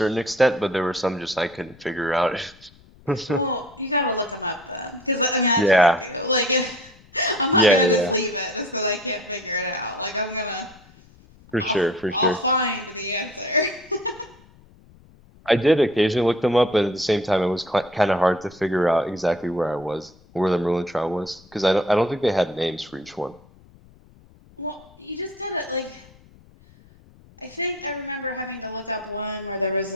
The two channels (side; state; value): left; noise; rumble, 26 dB below the sound